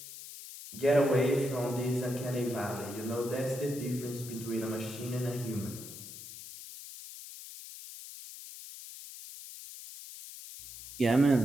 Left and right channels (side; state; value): left; noise; hiss, 13 dB below the sound